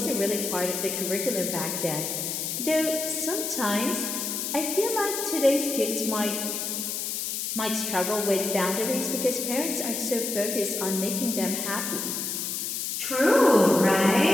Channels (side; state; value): left; noise; hiss, 3 dB below the sound